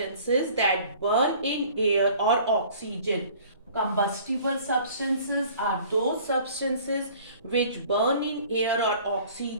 that burn in air or oxygen. Combustible substances are those substances which burn in air or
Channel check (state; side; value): inverted; both; correlation -0.50